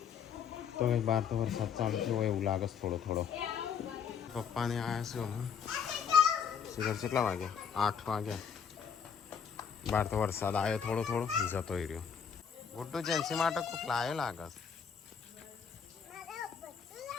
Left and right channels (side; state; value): right; quieter; 7.1 dB